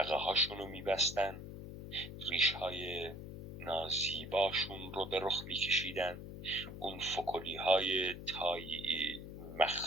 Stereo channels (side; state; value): left; noise; hum, 10 dB below the sound